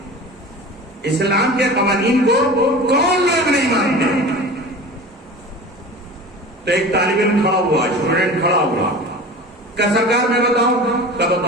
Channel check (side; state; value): both; normal; correlation 0.36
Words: اسلام کے قوانین کو کون لوگ نہیں مانتے. تو ایک طالب علم کھڑا ہوا, اسٹوڈنٹ کھڑا ہوا, کہ سرکار میں بتاؤں, کیا